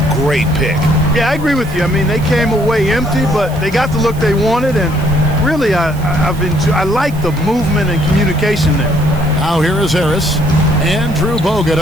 great pick. Yeah, I agree with you. I mean, they came away empty, but they got the look they wanted, and really, I like the movement and communication there. Now here is Harris. Andrew Bogut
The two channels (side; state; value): right; noise; hiss, 21 dB below the sound